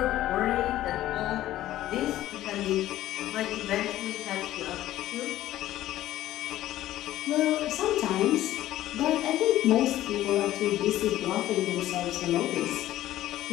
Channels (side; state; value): right; quieter; 14.2 dB